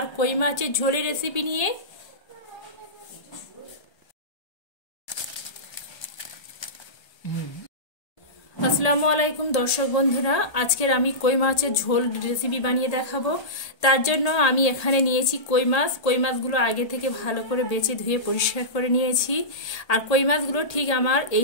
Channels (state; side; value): late; right; 1.3 ms